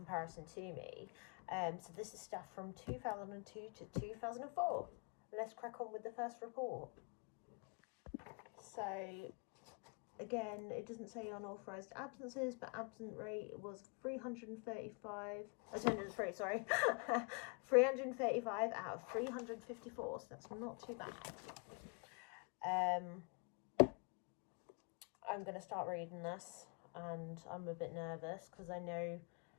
to me. So this is stuff from 2002 to 2004. Let's crack on with the first report. So again, it doesn't say unauthorised absences, but absent rate was 335, attendance rate, sorry, 335 out of 354, so that's not too bad. I'm going to start reading this, and I'm a bit nervous because I know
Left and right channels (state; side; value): quieter; right; 36.0 dB